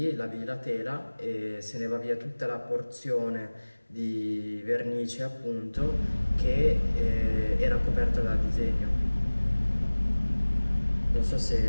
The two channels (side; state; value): both; inverted; correlation -1.00